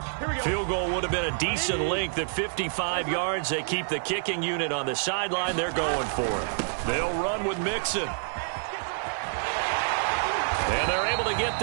Field goal would have been a decent length at 55 yards. They keep the kicking unit on the sideline. They're going for it. They'll run with Mixon. And they're able to get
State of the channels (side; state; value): left; silent; digital silence